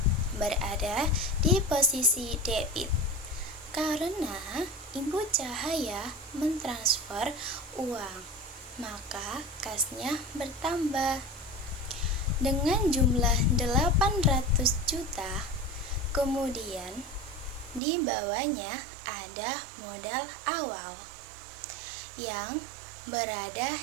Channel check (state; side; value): drops out; left; at 17.8 s